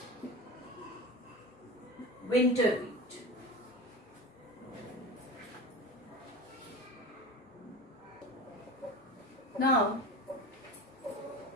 winter wheat. Now,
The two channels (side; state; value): both; normal; correlation 0.30